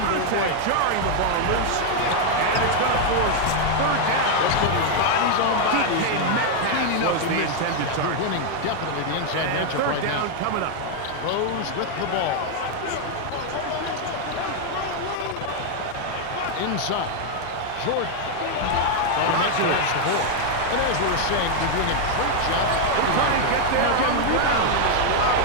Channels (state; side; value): different; both; correlation 0.00